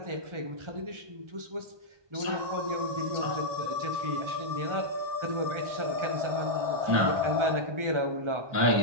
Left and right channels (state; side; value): late; left; 1.2 ms